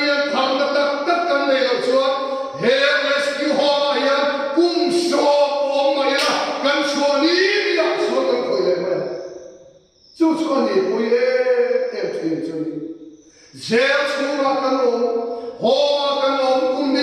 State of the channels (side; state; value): both; identical; correlation 1.00